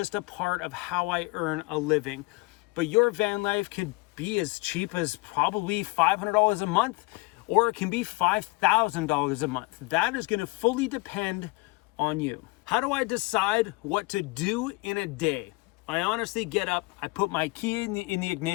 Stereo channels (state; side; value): quieter; right; 25.0 dB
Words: a part of how I earn a living. But your van life can be as cheap as probably $500 a month, or it can be $5,000 a month. That is going to fully depend on you. How do I decide what to do in a day? I honestly get up, I put my key in the